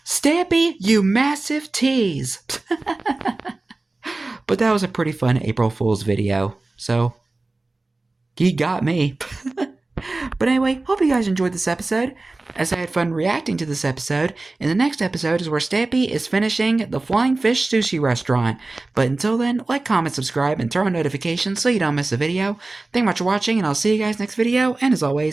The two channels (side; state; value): left; quieter; 3.2 dB